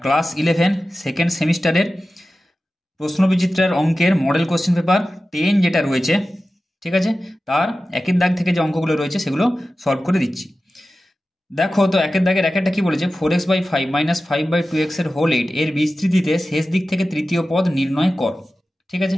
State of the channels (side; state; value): both; normal; correlation 0.94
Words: ক্লাস 11 সেকেন্ড সেমিস্টারের প্রশ্নবিচিত্রার অঙ্কের মডেল কোশ্চেন পেপার 10 যেটা রয়েছে, ঠিক আছে, তার একের দাগ থেকে যে অঙ্কগুলো রয়েছে সেগুলো সলভ করে দিচ্ছি। দেখো তো একের দাগের একটা কি বলেছে, 4x/5 - 5/2x এর হোল 8 এর বিস্তৃতিতে শেষ দিক থেকে তৃতীয় পদ নির্ণয় কর। ঠিক আছে,